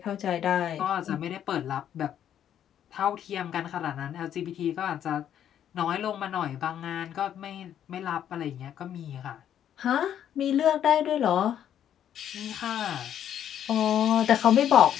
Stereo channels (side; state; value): right; quieter; 10.0 dB